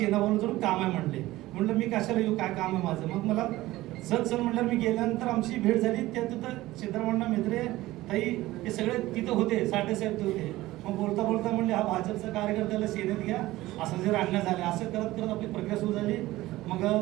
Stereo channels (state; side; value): quieter; left; 17.4 dB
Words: जाऊन काम आहे म्हणले। म्हटलं मी कशाला येऊ, काय काम आहे माझं। मग मला सर म्हटलं मी गेल्यानंतर आमची भेट झाली। त्या तिथं सिद्धाराम म्हेत्रे ताई हे सगळे तिथं होते, साठे साहेब ते होते। मग बोलता बोलता म्हणले हा भाजपचा कार्यकर्त्याला सेनेत घ्या, असं जर आणण्यात झाले। असं करत करत आपली प्रक्रिया सुरू झाली। मग